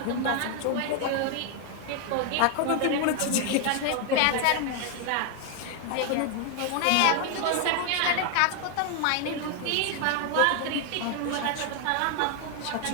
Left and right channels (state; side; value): different; both; correlation 0.00